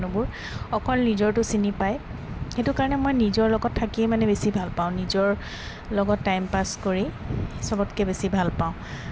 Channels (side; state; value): both; identical; correlation 1.00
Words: অকল নিজৰটো চিনি পায়। সেইটো কাৰণে মই নিজৰ লগত থাকিয়ে মানে বেছি ভাল পাওঁ, নিজৰ লগত টাইম পাছ কৰি চবতকৈ বেছি ভাল পাওঁ।